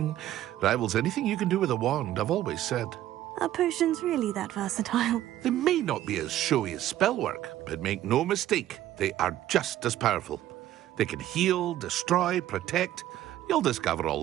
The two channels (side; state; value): left; quieter; 13.2 dB